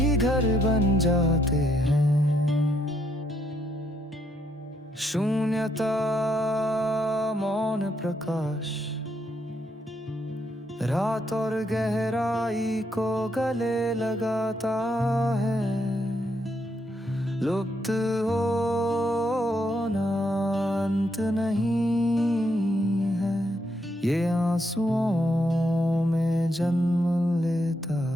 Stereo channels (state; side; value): normal; both; correlation 0.76